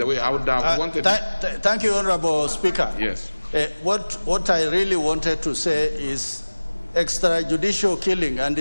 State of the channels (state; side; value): inverted; both; correlation -1.00